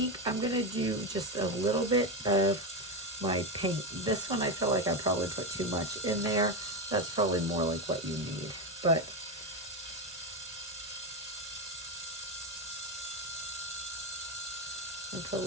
I'm going to do just a little bit of my paint. This one I feel like I probably put too much in there. That's probably more like what you need. But I'll put a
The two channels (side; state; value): both; normal; correlation 0.12